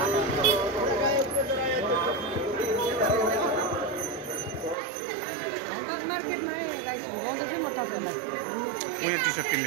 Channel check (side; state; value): left; drops out; at 4.8 s